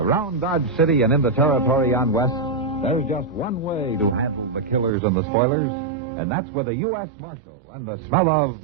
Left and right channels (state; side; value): drops out; left; at 4.9 s